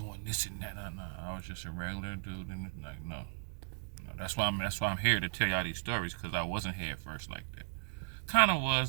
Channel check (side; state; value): left; silent; digital silence